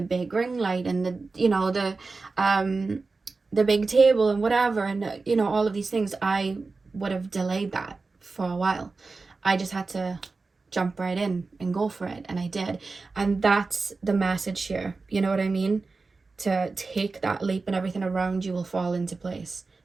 big ring light and the big table and whatever, and, all of these things, I would have delayed that for a while. I just had to jump right in and go for it, and I did. And that's the message here, you know what I mean? To take that leap, and everything around you will fall into place,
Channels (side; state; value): left; quieter; 3.9 dB